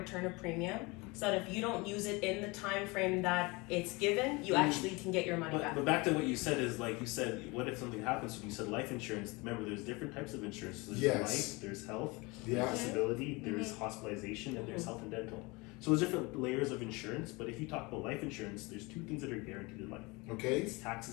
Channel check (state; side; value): quieter; right; 25.4 dB